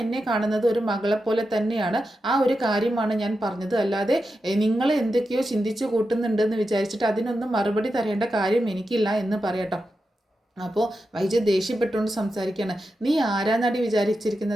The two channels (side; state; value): both; normal; correlation 0.89